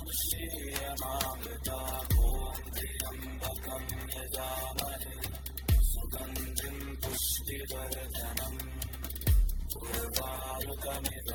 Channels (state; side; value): identical; both; correlation 1.00